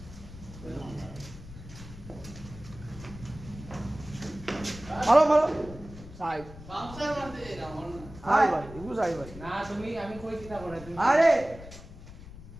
মারো সাইড বাউন্সার মারতে যাই না মন হাই ভাই ইগু সাইড ভাই না তুমি আমি কই কিটা করে তুমি আরে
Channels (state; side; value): noise; left; rumble, 15 dB below the sound